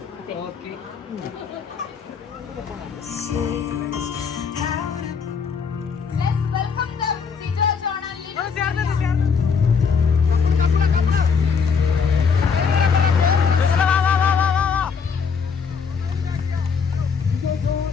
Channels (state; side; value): quieter; right; 5.9 dB